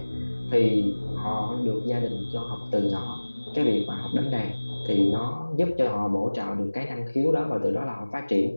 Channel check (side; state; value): both; inverted; correlation -1.00